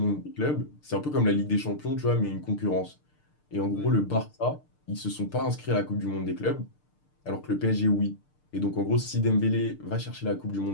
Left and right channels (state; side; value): late; right; 6.7 ms